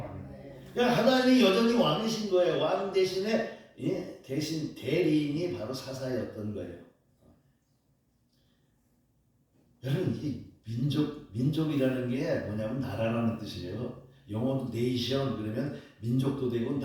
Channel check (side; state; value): both; identical; correlation 1.00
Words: 그러니까 하나님이 여전히 왕이신 거예요. 왕 대신에 대신 대리인이 바로 사사였던 거예요. 여러분 이 민족이라는 게 뭐냐면 나라라는 뜻이에요. 영어도 네이션 그러면 민족도 되고